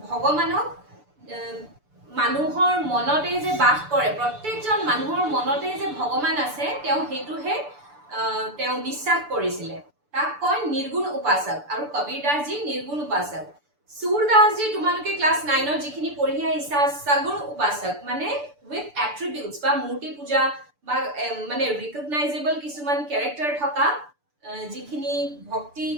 भगवानक মানুহৰ মনতে যে বাস কৰে প্ৰত্যেকজন মানুহৰ মনতে যে ভগৱান আছে তেও হেতুহে তেও বিশ্বাস কৰিছিলে তাক কয় নিৰ্গুণ উপাসক আৰু কবীৰ দাস জি নিৰ্গুণ উপাসক सूरदास जी তোমালোকে ক্লাস 9 ৰ যিখিনি পঢ়ি আহিছা সগুণ উপাসক মানে উইথ এট্ৰিবিউটস বা মূৰ্তি পূজা বা মানে ৰিকগনাইজেবল কিছুমান ক্যাৰেক্টাৰ থকা যিখিনি ভক্তি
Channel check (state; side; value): late; left; 6.9 ms